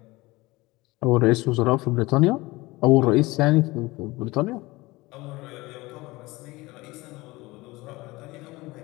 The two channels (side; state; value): right; quieter; 21.3 dB